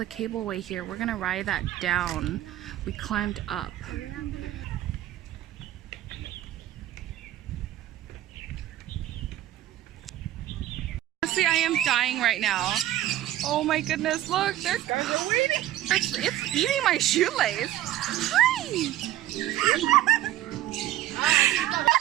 cableway here. We're gonna ride that down. We climbed up. Honestly, I am dying right now. Oh my goodness, look, they're waiting. It's eating my shoelace. Hi!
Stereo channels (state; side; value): quieter; left; 13.7 dB